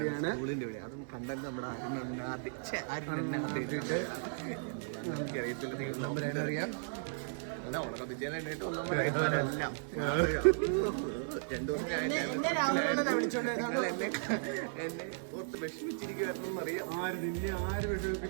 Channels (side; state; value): left; silent; digital silence